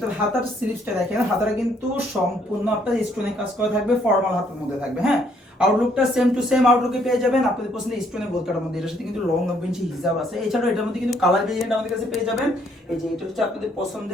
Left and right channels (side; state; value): both; normal; correlation 0.67